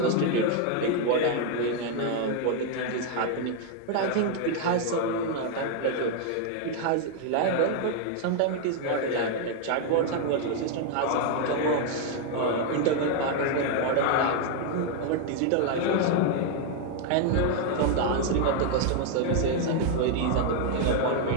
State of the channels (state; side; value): different; both; correlation 0.00